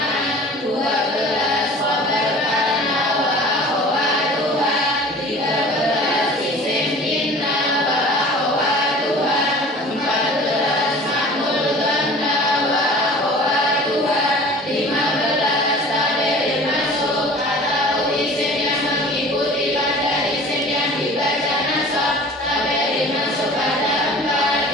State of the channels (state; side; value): normal; both; correlation 0.44